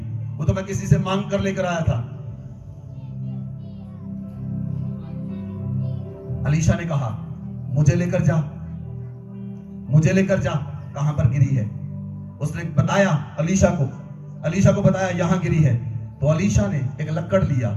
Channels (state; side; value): identical; both; correlation 1.00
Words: वो तो मैं किसी से मांग कर लेकर आया था। अलीशा ने कहा मुझे लेकर जा। मुझे लेकर जा, कहां पर गिरी है। उसने बताया अलीशा को बताया यहां गिरी है। तो अलीशा ने एक लक्कड़